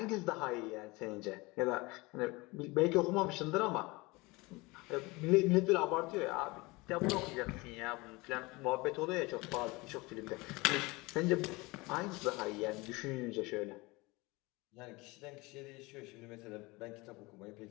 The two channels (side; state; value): right; quieter; 23.7 dB